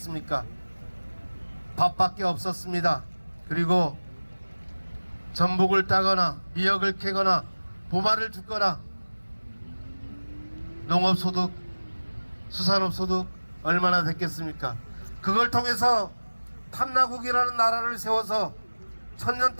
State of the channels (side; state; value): both; inverted; correlation -1.00